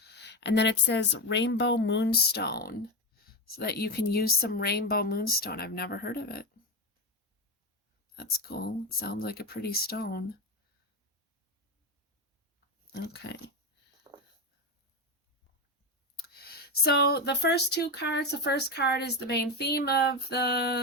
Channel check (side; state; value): both; normal; correlation 0.15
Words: And then it says rainbow moonstone, so that you can use some rainbow moonstone. I've never heard of it. That's cool. It sounds like a pretty stone. Okay. So the first two cards, the first card is the main theme of